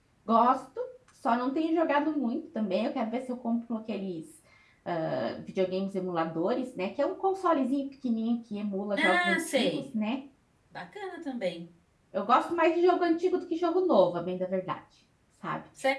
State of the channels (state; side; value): identical; both; correlation 1.00